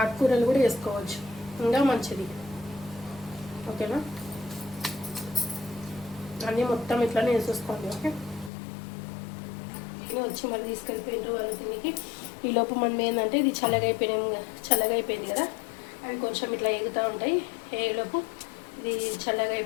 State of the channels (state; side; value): drops out; right; at 8.5 s